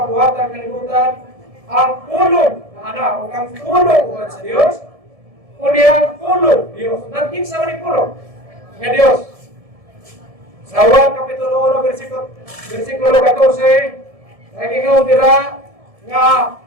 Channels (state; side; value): late; left; 1.7 ms